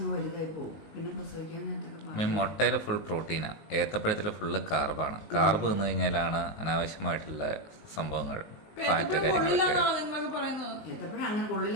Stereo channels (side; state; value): right; late; 19 ms